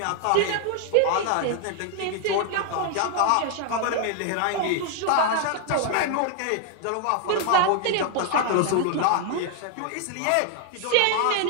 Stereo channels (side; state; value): both; different; correlation 0.00